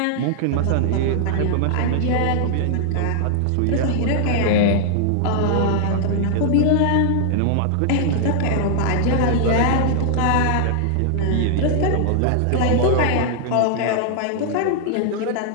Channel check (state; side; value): different; both; correlation 0.00